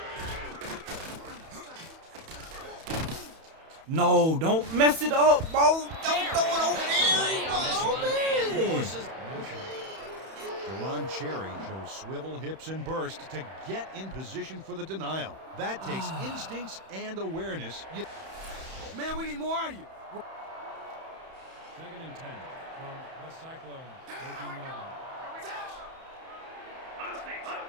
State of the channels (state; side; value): late; left; 31 ms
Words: No, don't mess it up, bro. Don't throw it over there, bro. Deron Cherry shows swivel hips and burst to get in position for the denial. That takes instincts and awareness. Man, we need more out of you. Second and 10 from the Cyclones. 13-yard line.